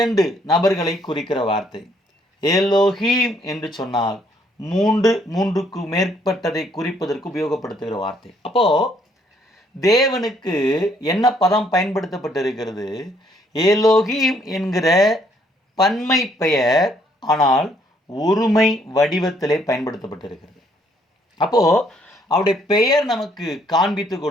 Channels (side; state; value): both; normal; correlation 0.67